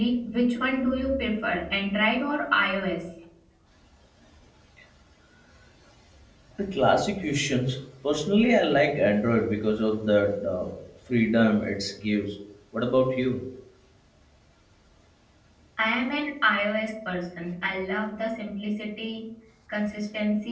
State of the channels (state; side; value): identical; both; correlation 1.00